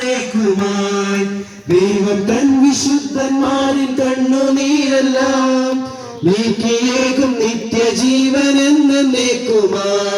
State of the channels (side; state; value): both; identical; correlation 1.00